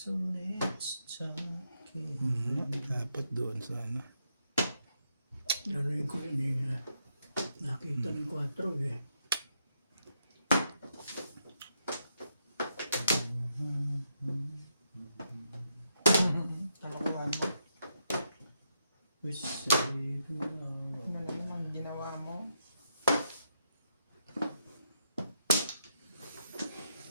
Dapat doon sana. Naroon ko yun eh. Nakita ng 4 eh. Talakuhan mo. We save now. Ano naman ginawa mo?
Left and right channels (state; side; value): inverted; both; correlation -0.80